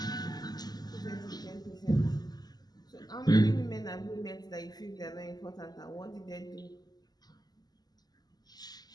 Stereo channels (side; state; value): right; late; 0.20 ms